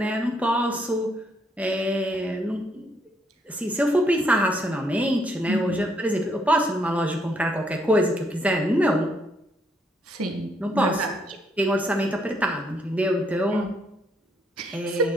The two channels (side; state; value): both; normal; correlation 0.72